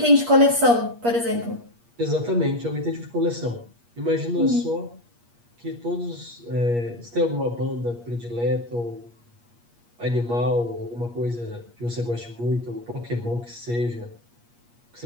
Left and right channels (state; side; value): late; left; 8.4 ms